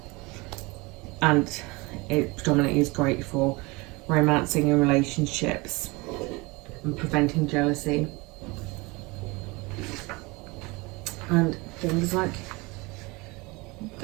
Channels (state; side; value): quieter; left; 25.1 dB